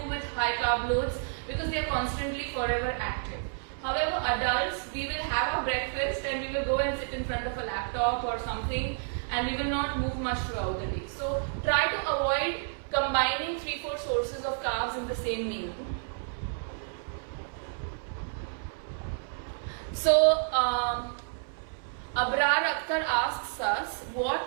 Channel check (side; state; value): left; silent; 58 dB below the other